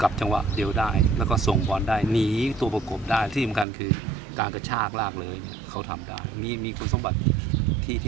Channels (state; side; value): drops out; left; at 3.7 s